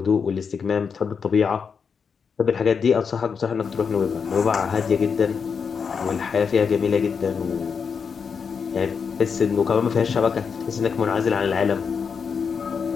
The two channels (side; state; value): right; quieter; 6.1 dB